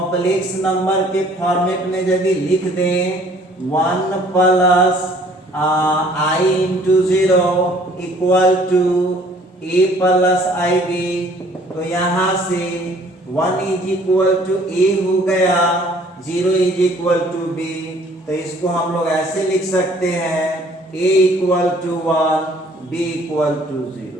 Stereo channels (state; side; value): normal; both; correlation 0.57